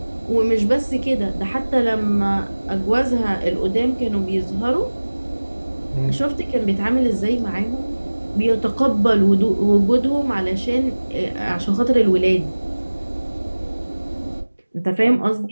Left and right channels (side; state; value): both; inverted; correlation -1.00